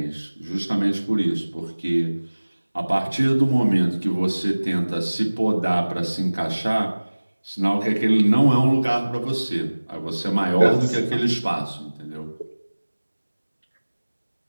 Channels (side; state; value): both; inverted; correlation -1.00